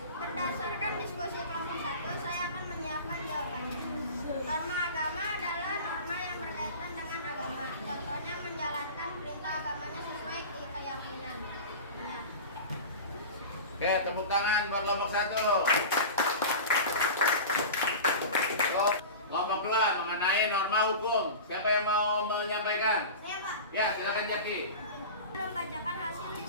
Berdasarkan diskusi kelompok 1, saya akan menyiapkan jawabannya. Norma agama adalah norma yang berkaitan dengan agama. Contohnya menjalankan perintah agamanya sesuai keyakinan. Ya. Oke, tepuk tangan buat kelompok 1. Kelompok 2 mengenai norma hukum. Siapa yang mau menyampaikan? Saya, Pak. Ya, silakan Jaki. Membacakan hasil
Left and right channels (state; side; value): inverted; both; correlation -0.32